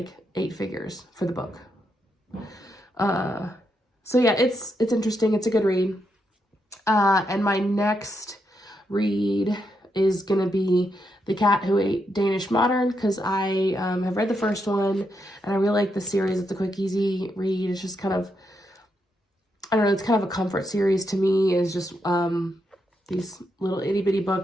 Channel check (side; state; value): both; normal; correlation 0.81